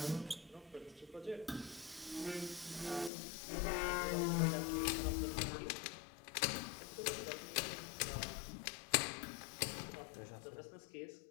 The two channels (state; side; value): drops out; right; at 3.1 s